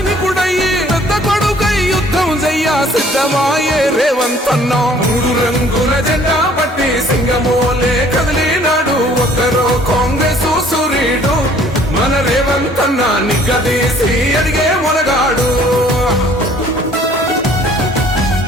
పెద్ద కొడుకై యుద్ధం చెయ్య సిద్ధమాయే రేవంత్ అన్న మూడు రంగుల జెండా బట్టి సింగమోలే కదిలినాడు ఒక్కరో కాంగ్రెస్ సూర్యుడు మన రేవంత్ అన్న నిగ్గదీసి అడిగే మొనగాడు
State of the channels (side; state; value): both; normal; correlation 0.56